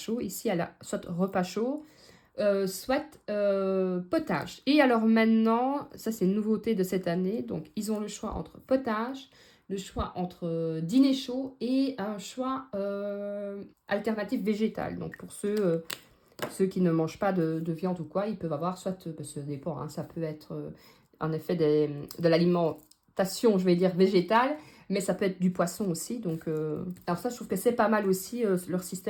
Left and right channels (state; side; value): identical; both; correlation 1.00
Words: Ici, elle a soit repas chaud, soit potage. Et alors maintenant, ça c'est une nouveauté de cette année. Donc ils ont le choix entre potage, le choix entre dîner chaud et un choix alternatif végétal. Donc pour ceux qui ne mangent pas de viande ou quoi, ils peuvent avoir soit, ça dépend, hein, ça peut être en effet de l'alimentation, je vais dire végétale, mais ça peut être du poisson aussi. Donc alors ça, je trouve que c'est pas mal aussi leur